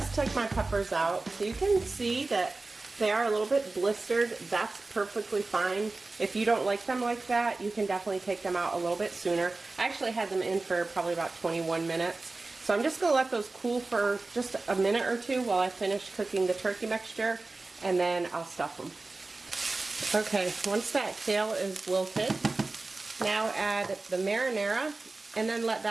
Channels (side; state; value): left; quieter; 3.4 dB